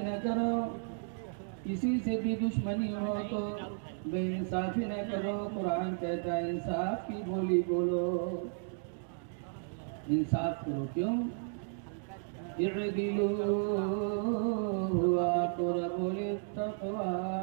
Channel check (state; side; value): silent; left; digital silence